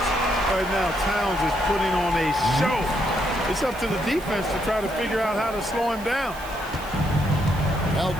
Right now, Towns is putting on a show. It's up to the defense to try to figure out how to slow him down. Now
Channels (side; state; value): right; noise; hiss, 18 dB below the sound